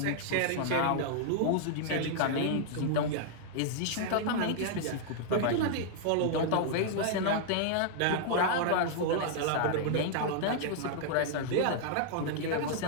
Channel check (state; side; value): different; both; correlation -0.01